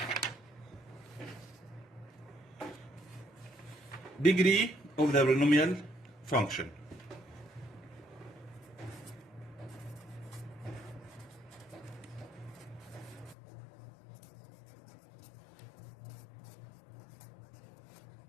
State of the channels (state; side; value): drops out; right; at 13.4 s